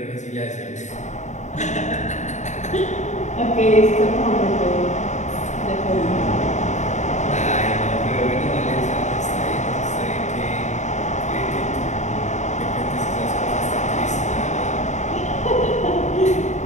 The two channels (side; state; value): right; late; 0.34 ms